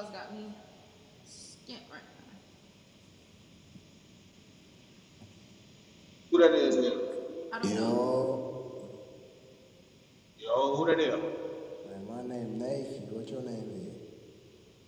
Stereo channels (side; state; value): both; identical; correlation 1.00